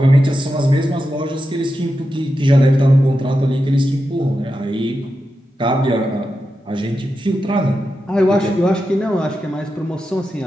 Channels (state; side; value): normal; both; correlation 0.89